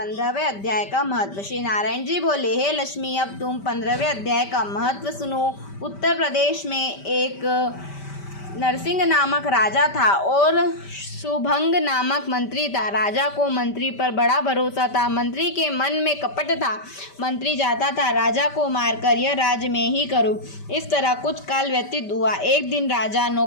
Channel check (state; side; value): late; right; 5.1 ms